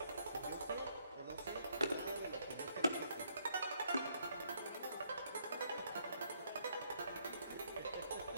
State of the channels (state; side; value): inverted; both; correlation -0.71